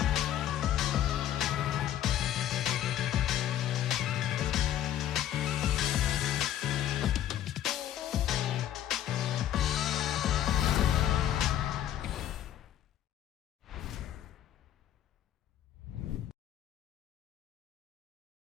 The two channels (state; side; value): quieter; right; 11.4 dB